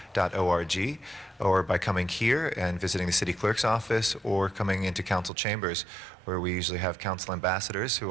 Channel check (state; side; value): drops out; left; at 5.3 s